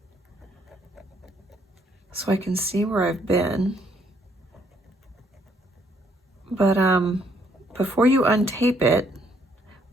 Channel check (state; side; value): normal; both; correlation 0.68